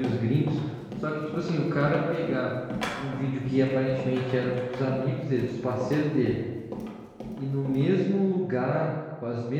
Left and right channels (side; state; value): both; identical; correlation 1.00